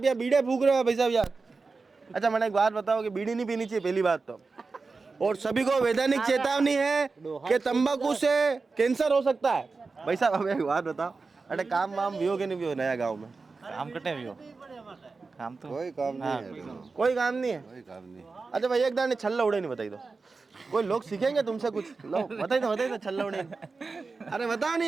यहाँ बीड़े फूक रहे हो भाई साहब यार? अच्छा, मैंने एक बात बताओ कि बीड़ी नहीं पीनी चाहिए, पहली बात तो। और सभी को वैधानिक चेतावनी है कि तंबाकू से कैंसर हो सकता है। भाई साहब, हमें एक बात बताओ, अरे काम वाम भी हो कि नहीं भी हो नया गाँव में? काम कटे भी हो, काम तो कोई काम नहीं है। कोई काम नहीं है। अच्छा भाई, एक दाने छल्ला उड़े नहीं बताई दो, कोई लोग सीखेंगे तुमसे कुछ। लो बताइए तो छल्ला उड़े। अरे बताओ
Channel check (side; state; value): left; quieter; 4.2 dB